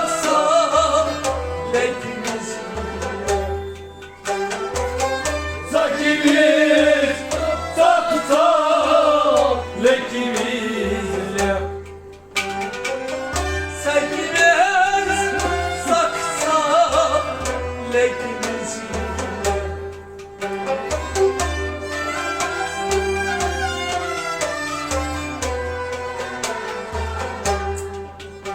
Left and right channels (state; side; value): identical; both; correlation 1.00